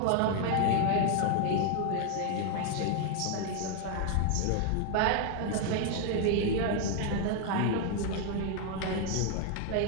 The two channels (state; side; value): different; both; correlation 0.00